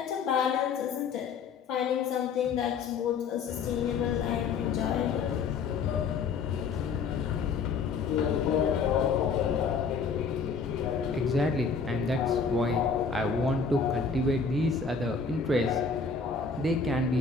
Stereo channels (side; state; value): right; quieter; 5.3 dB